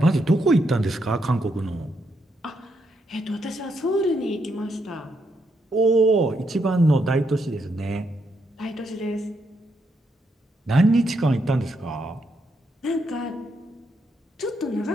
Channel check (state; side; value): normal; both; correlation 0.79